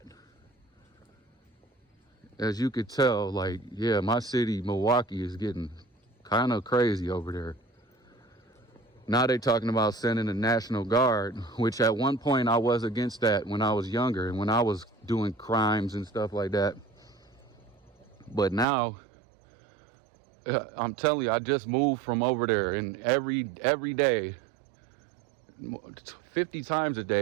As you could tell, like, yeah, my city, Milwaukee, is getting kind of crazy over there. Now they talking about sending the National Guard, which at one point I was against that when I was younger and when I was doing crimes and stuff like that. But now, I'm telling you, I just moved from over there, and every day, 50 times a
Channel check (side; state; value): left; drops out; at 18.7 s